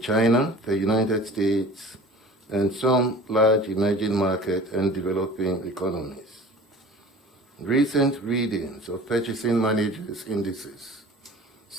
the United States, and some large emerging market and developing economies. Recent readings of purchasing managers' indices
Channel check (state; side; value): normal; both; correlation 0.42